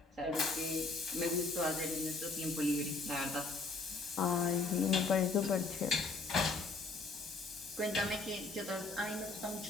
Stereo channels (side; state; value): right; quieter; 3.6 dB